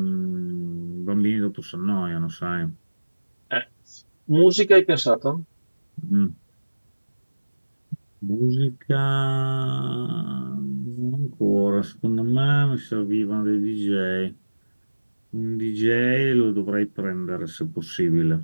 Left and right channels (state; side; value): inverted; both; correlation -1.00